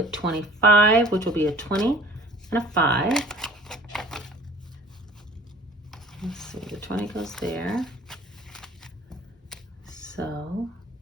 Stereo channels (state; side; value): normal; both; correlation 0.49